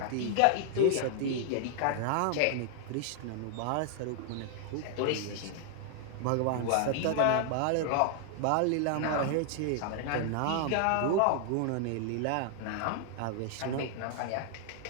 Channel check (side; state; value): both; different; correlation 0.00